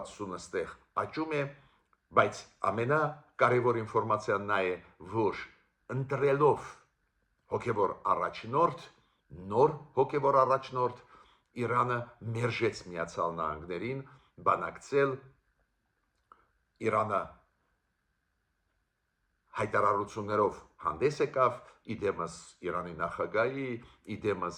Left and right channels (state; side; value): identical; both; correlation 1.00